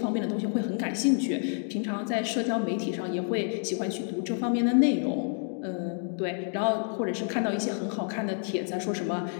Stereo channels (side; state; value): right; silent; 57 dB below the other